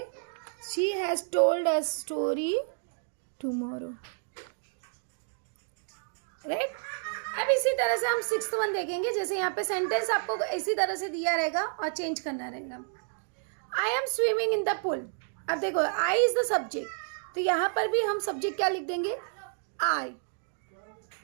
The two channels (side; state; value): left; silent; digital silence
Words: she has told us story tomorrow, right. अब इसी तरह से हम सिक्स्थ वन देखेंगे, जैसे यहाँ पे सेंटेंस आपको इसी तरह से दिया रहेगा और चेंज करना रहेगा। I am swimming in the pool। अब देखो I is the subject, तो यहाँ पर भी हम सब्जेक्ट क्या लिख देंगे, आई,